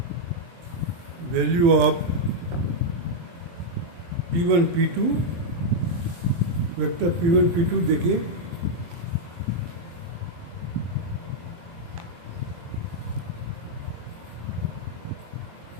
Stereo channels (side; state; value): left; late; 23 ms